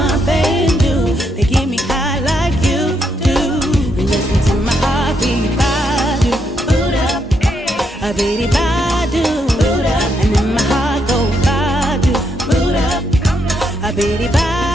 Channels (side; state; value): both; normal; correlation 0.78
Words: new to get me high like you do. Listen to my heartbeat. A bitty